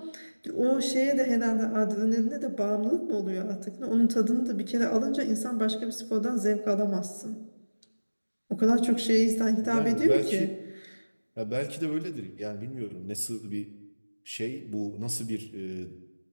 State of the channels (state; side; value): inverted; both; correlation -1.00